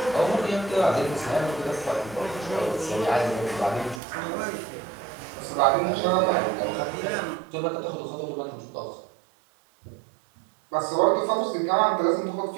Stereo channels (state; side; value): drops out; left; at 4.0 s